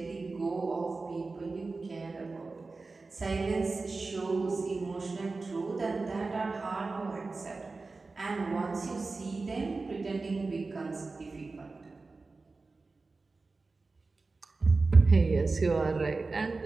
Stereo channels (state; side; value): quieter; left; 3.8 dB